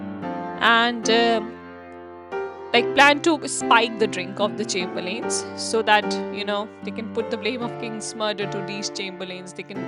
And like plan to spike the drink of the chamberlains so that they can put the blame of king's murder to these chamberlains. They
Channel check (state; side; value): identical; both; correlation 1.00